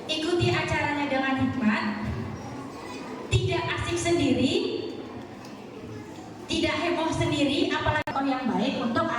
ikuti acaranya dengan hikmat, tidak asik sendiri, tidak heboh sendiri, apalagi contoh yang baik untuk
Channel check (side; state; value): both; identical; correlation 1.00